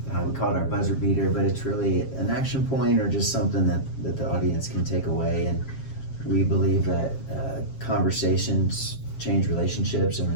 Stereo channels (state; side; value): late; right; 7.4 ms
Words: we call it our buzzer beater, but it's really an action point or just something that the audience can take away. And we believe that conversations change relationships, and